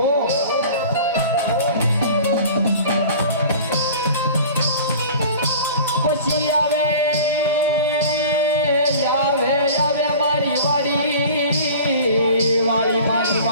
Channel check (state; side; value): inverted; both; correlation -0.41